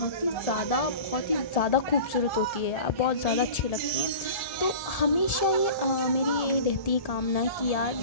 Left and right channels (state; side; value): late; right; 1.7 ms